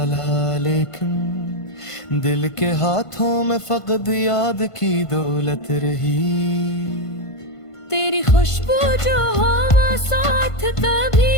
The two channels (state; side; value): late; right; 1.5 ms